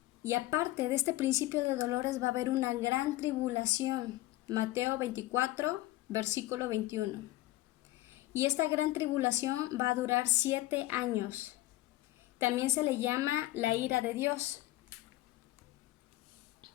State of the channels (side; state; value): right; quieter; 16.7 dB